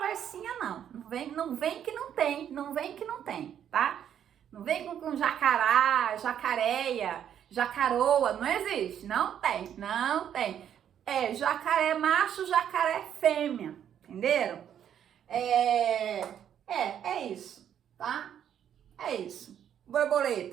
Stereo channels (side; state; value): left; quieter; 9.5 dB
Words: não. Não vem que não tem, tá? Não vem com jacará, jacareia, jacaroa, não existe, não tem. É jacaré macho, jacaré fêmea, entenderam? É isso, tá? É isso.